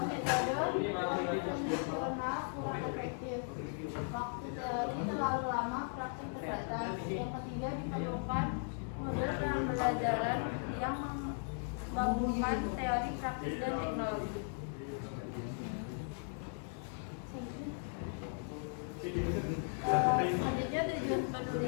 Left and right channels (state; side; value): silent; right; 53 dB below the other